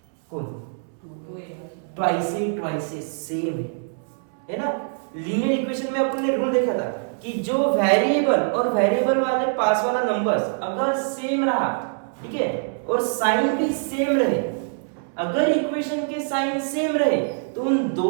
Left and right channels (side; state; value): left; silent; 63 dB below the other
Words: कौन, ट्वाइस ए सेम है ना, लीनियर इक्वेशन में अपन ने रूल देखा था कि जो वेरिएबल और वेरिएबल वाले पास वाला नंबर्स अगर सेम रहा, ठीक है, और साइन भी सेम रहे, अगर इक्वेशन के साइन सेम रहे तो उन